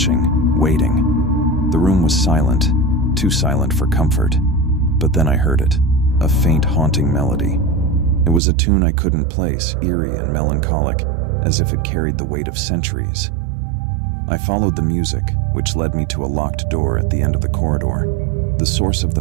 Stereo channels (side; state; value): left; drops out; at 8.4 s